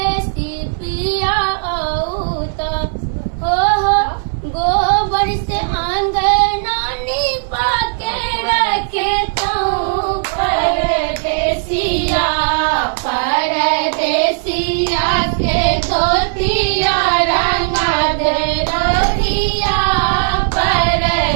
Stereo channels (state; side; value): silent; left; digital silence